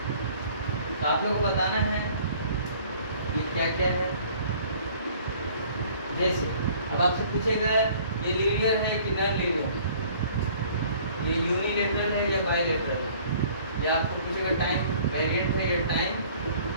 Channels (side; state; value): both; inverted; correlation -0.54